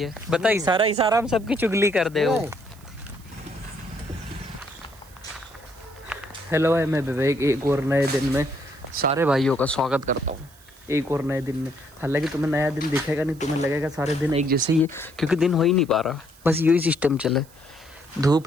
बता इशारा हम सबकी चुगली कर दे हो। हेलो भाई, मैं विवेक एक और नए दिन में सारे भाइयों का स्वागत करता हूँ। एक और नए दिन में, हालांकि तुम्हें नया दिन दिखेगा नहीं, तुम्हें लगेगा सारे दिन एक जैसे ही है, क्योंकि दिन हो ही नहीं पा रहा। बस यही सिस्टम चले,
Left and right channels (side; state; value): right; noise; hiss, 26 dB below the sound